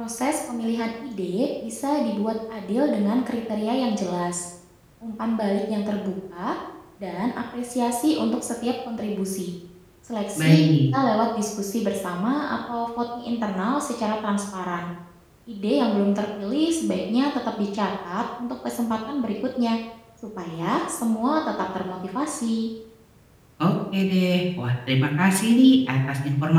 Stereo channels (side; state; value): both; identical; correlation 1.00